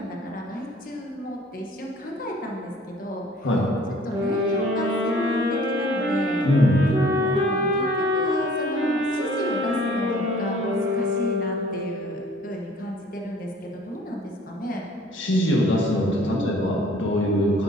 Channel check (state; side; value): normal; both; correlation 0.53